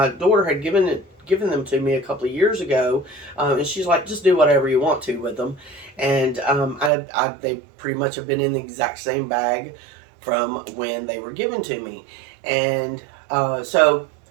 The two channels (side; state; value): left; drops out; at 6.9 s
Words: daughter had given them to me a couple of years ago, and she's like, just do whatever you want to with them. And they pretty much have been in the exact same bag from when they were given to me. And so